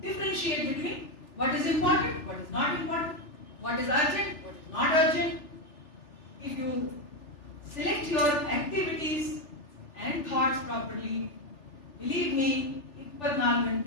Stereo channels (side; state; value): right; late; 3.4 ms